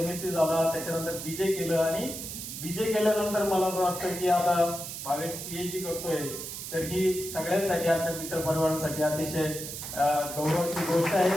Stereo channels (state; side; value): noise; right; hiss, 8 dB below the sound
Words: झाला, त्याच्यानंतर बीजे केलं आणि बीजे केल्यानंतर मला असं वाटतं की आता भावेश पीएचडी करतोय, तर ही सगळ्यांसाठी आमच्या मित्र परिवारांसाठी अतिशय गौरवाची गोष्ट आहे.